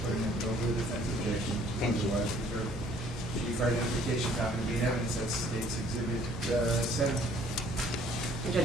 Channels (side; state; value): both; normal; correlation 0.58